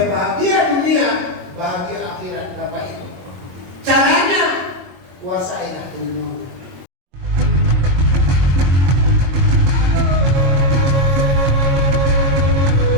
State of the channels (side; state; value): left; late; 22 ms